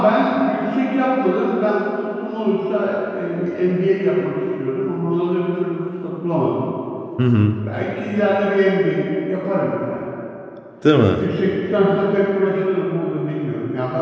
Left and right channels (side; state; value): both; identical; correlation 1.00